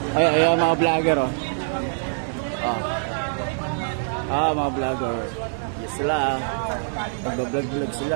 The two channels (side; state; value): left; silent; 63 dB below the other